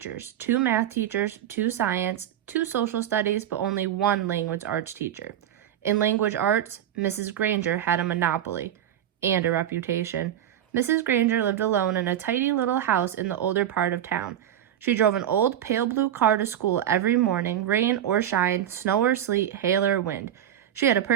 2 math teachers, 2 science, 2 social studies, but only 1 language arts teacher. In language arts, Mrs. Granger had a monopoly and a reputation. Mrs. Granger lived alone in a tidy little house in the older part of town. She drove an old pale blue car to school every morning, rain or shine, snow or sleet, hail or wind. She had a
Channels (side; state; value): left; quieter; 10.8 dB